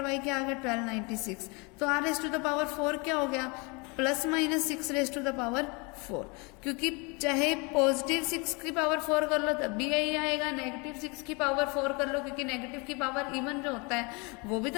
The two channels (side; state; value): right; quieter; 29.8 dB